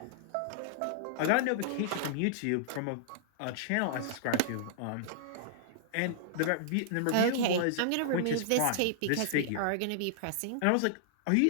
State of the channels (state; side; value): different; both; correlation -0.01